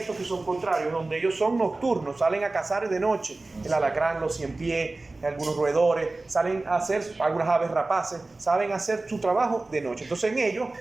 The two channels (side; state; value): left; quieter; 3.2 dB